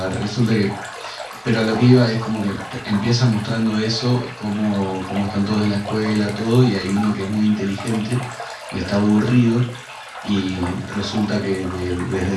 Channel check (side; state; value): both; identical; correlation 1.00